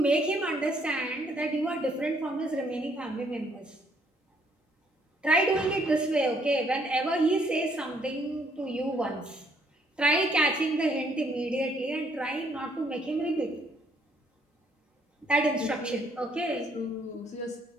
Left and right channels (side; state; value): both; normal; correlation 0.68